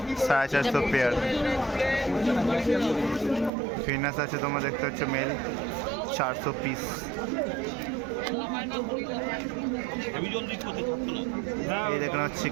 450 পেয়ার। ফিনাস আছে তোমার দেখতে হচ্ছে মেল 400 পিস। এই দেখুন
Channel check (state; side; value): drops out; left; at 3.5 s